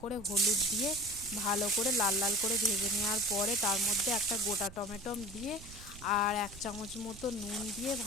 করে হলুদ দিয়ে ভালো করে লাল লাল করে ভেজে নেওয়ার পরে তার মধ্যে একটা গোটা টমেটো দিয়ে আর 1 চামচ মতো নুন দিয়ে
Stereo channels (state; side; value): noise; right; rumble, 16 dB below the sound